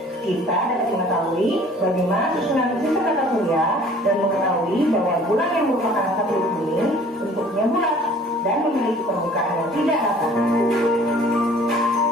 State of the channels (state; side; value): normal; both; correlation 0.51